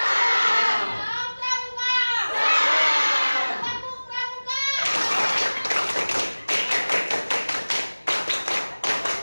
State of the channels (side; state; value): both; inverted; correlation -1.00